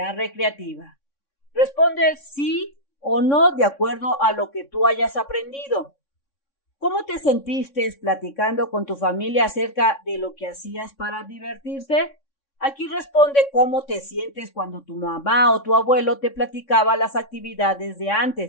recreativa. Responde sí o no de acuerdo a lo que tú hayas aprendido. ¿Cómo te sentiste platicando con tu familia acerca de lo que hacías para divertirse? Aquí responde cómo te sientes cuando tu mamá o tu abuelo te platicaba las actividades de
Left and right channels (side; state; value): right; late; 3.6 ms